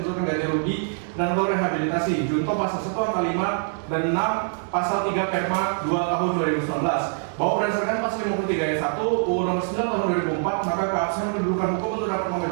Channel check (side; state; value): left; silent; 58 dB below the other